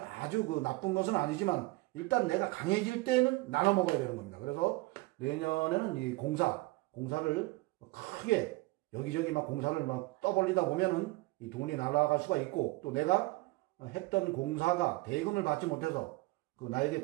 그 나쁜 것은 아니지만 일단 내가 강해질 때는 나눠 먹어야 되는 겁니다. 그래서 내년에는 이 공사를 크게 여기저기 막 공사를 막 떠벌리다 보면은 이 돈이 날아갈 수가 있고, 또 내가 했던 공사가 대금을 받지 못해서 그 나에게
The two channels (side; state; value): left; quieter; 22.1 dB